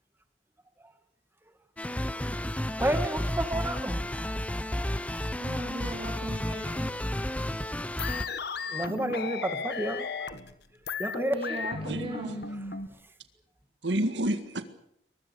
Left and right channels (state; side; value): normal; both; correlation 0.71